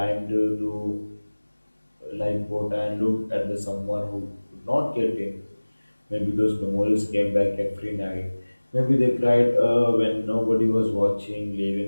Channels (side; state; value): both; inverted; correlation -1.00